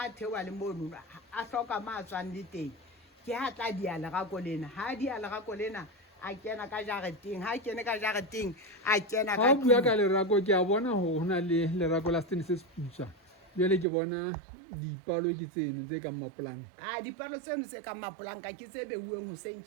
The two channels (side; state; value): left; drops out; at 13.9 s